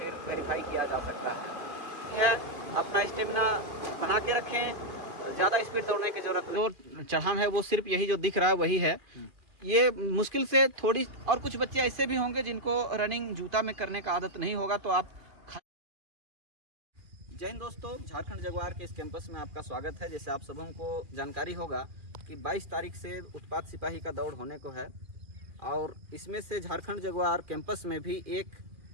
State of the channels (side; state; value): left; late; 2.3 ms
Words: वेरीफाई किया जा सकता है। अपना स्टेमिना बना के रखें, ज़्यादा स्पीड दौड़ने की जरूरत नहीं। जो चढ़ान है वो सिर्फ यही जो दिख रहा है वही है। ये मुश्किल से थोड़ी, और कुछ बच्चे ऐसे भी होंगे जिनको रनिंग जूता में करने का आदत नहीं होगा, तो आप। जय हिंद दोस्तों, झारखंड जगुआर के इस कैंपस में आपका स्वागत है। जैसे आप सबों को जानकारी होगा कि 22 तारीख से उत्पाद सिपाही का दौड़ होने को है, और इसमें से झारखंड जगुआर कैंपस में भी एक